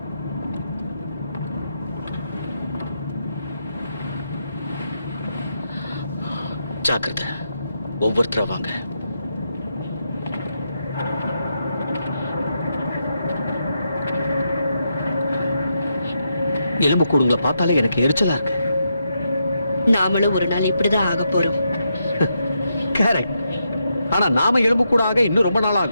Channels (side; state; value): both; inverted; correlation -0.83